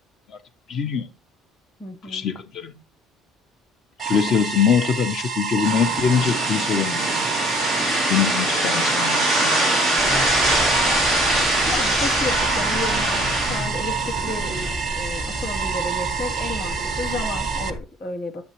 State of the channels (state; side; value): normal; both; correlation 0.53